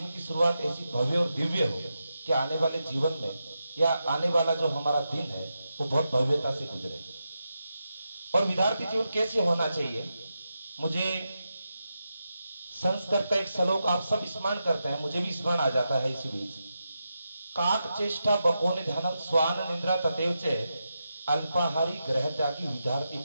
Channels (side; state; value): both; inverted; correlation -0.88